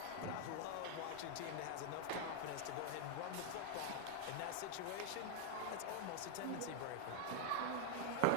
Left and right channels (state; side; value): different; both; correlation 0.00